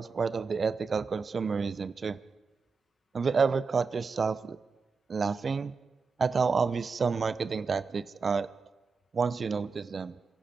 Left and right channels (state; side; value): quieter; left; 4.9 dB